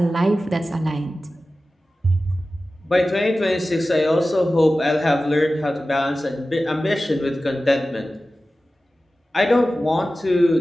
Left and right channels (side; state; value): both; normal; correlation 0.95